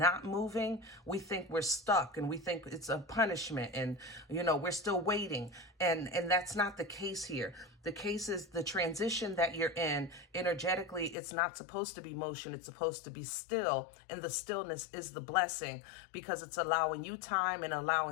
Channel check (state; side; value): drops out; right; at 11.2 s